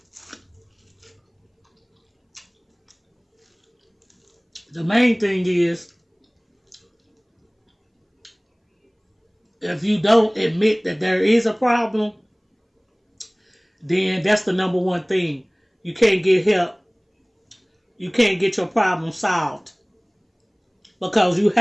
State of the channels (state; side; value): identical; both; correlation 1.00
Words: The main thing is, if you don't admit that there is a problem, then that's the number one thing. You can't get help. You can't get your problem solved because you